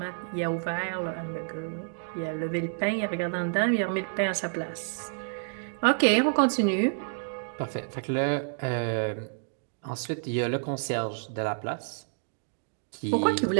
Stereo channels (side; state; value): left; silent; digital silence